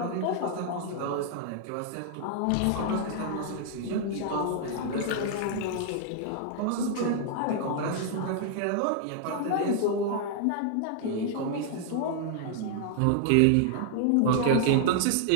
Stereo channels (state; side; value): different; both; correlation -0.01